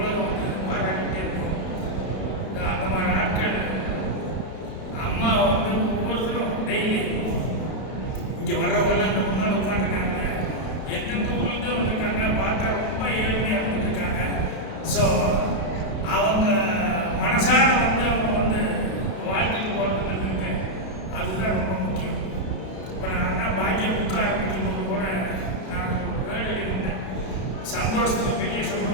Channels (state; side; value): late; right; 32 ms